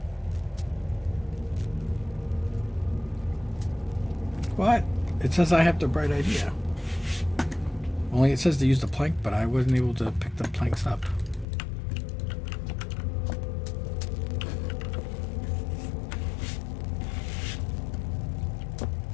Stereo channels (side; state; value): right; drops out; at 11.5 s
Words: What? It says I have the bright idea. Only it says to use the plank, but I wasn't able to pick the planks up.